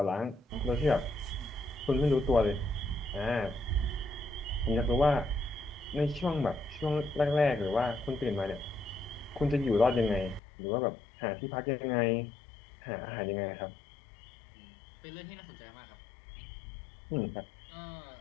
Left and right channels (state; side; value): drops out; right; at 10.4 s